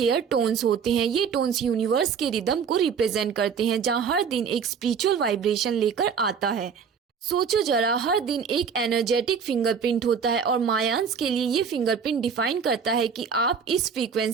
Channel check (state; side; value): quieter; left; 6.5 dB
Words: टोन्स होते हैं। ये टोन्स यूनिवर्स के रिदम को रिप्रेजेंट करते हैं, जहाँ हर दिन एक स्पिरिचुअल वाइब्रेशन लेकर आता है। सोचो जरा, हर दिन एक एनर्जेटिक फिंगरप्रिंट होता है और मायान्स के लिए ये फिंगरप्रिंट डिफाइन करता है कि आप इस